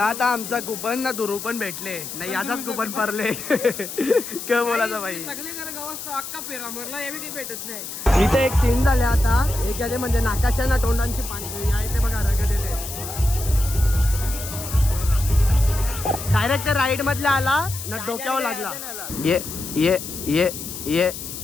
आता आमचा कुपन ना दुरू पण भेटले नाही. याचाच कुपन पडले. काय बोलायचं बाई. सगळे घर गावात अक्का पेरा मरला हे काही भेटत नाही. इथे एक सीन झाले आता. एक याचे म्हणजे नाकाच्या ना तोंडांची पाणी आहे ते बघा रगत येते. डायरेक्ट राईड मधला आला ना डोक्यावर लागला. ये ये ये ये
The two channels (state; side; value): noise; left; hiss, 9 dB below the sound